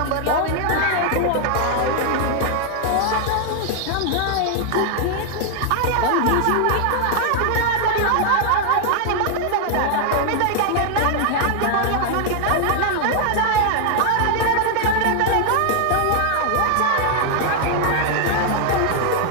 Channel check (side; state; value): both; different; correlation 0.00